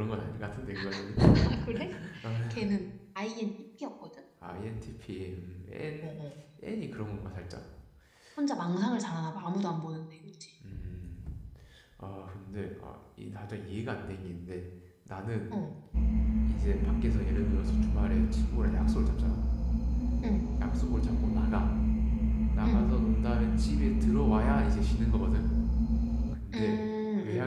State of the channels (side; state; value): both; identical; correlation 1.00